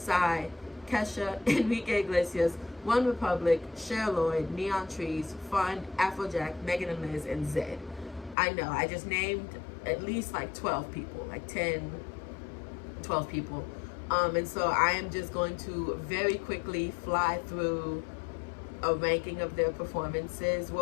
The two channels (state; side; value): drops out; right; at 8.3 s